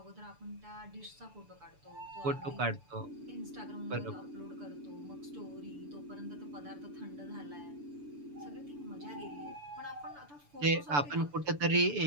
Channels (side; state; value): left; late; 6.9 ms